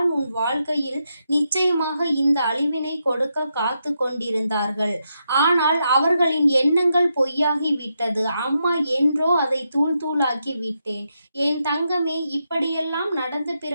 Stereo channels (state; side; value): inverted; both; correlation -0.83